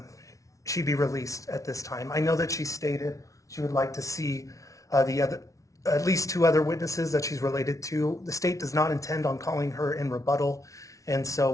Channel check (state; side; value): late; right; 0.16 ms